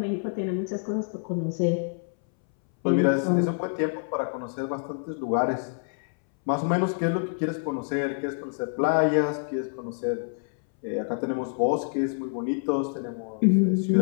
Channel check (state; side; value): silent; right; 60 dB below the other